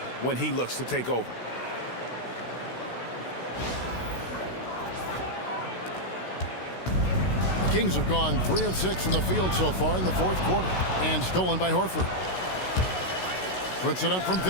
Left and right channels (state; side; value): late; right; 16 ms